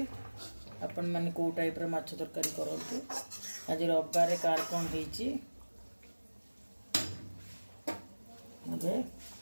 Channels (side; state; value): both; inverted; correlation -1.00